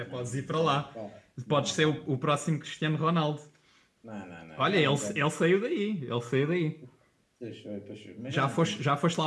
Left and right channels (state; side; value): identical; both; correlation 1.00